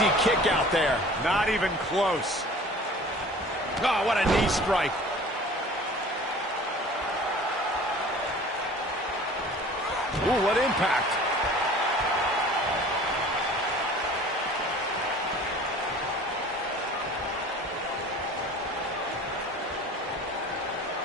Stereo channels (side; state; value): both; normal; correlation 0.45